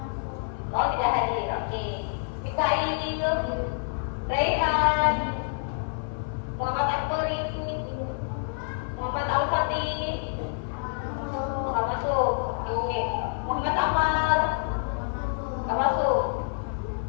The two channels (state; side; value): silent; right; 60 dB below the other